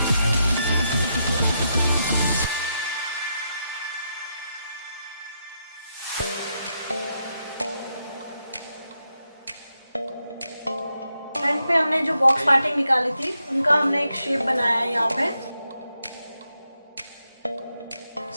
फ्रंट पे हमने जो बॉक्स पार्टिंग निकाली थी उनका हमने एक शेप बनाया है। यहाँ पे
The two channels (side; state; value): both; inverted; correlation -0.83